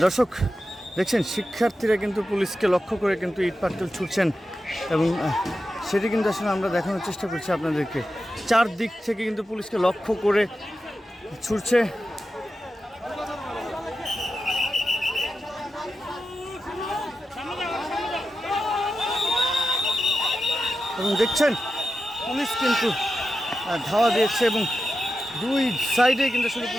দর্শক দেখছেন, শিক্ষার্থীরা কিন্তু পুলিশকে লক্ষ্য করে কিন্তু ইট পাটকেল ছুটছেন এবং সেটি কিন্তু আসলে আমরা দেখানোর চেষ্টা করছি আপনাদেরকে। চারদিক থেকে কিন্তু পুলিশকে লক্ষ্য করে ছুটছে এবং দেখছেন পুলিশ কিন্তু ধাওয়া দিয়েছে এবং দুই সাইডে কিন্তু আসলে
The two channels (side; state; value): both; normal; correlation 0.91